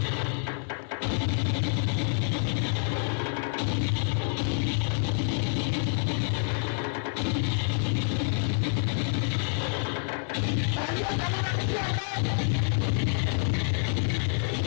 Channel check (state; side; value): silent; right; 60 dB below the other